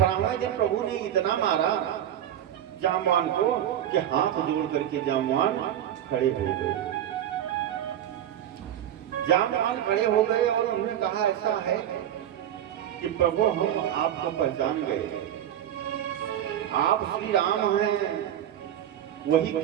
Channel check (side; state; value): left; quieter; 10.9 dB